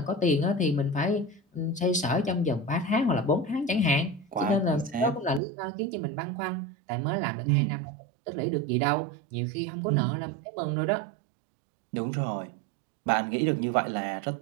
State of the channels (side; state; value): left; drops out; at 5.4 s